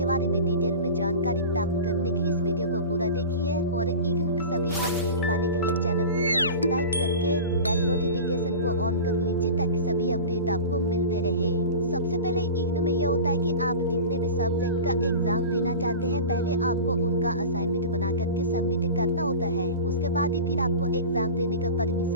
बारे में डिटेल में जानकारी प्राप्त करने के लिए इस वीडियो को पूरा देखिए और इग्नू के सभी अपडेट पाने के लिए चैनल को सब्सक्राइब करके बेल नोटिफिकेशन को ऑन कर लीजिए ताकि सभी अपडेट आपको मिलते रहे। सबसे पहले इग्नू में यह होता है कि आप जितने भी सब्जेक्ट का एग्जाम देना चाहते हैं, पहले आपको उनका असाइनमेंट बना करके सबमिट करना होता है। उसके बाद ही फिर आपको एग्जाम देने का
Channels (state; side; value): inverted; both; correlation -0.33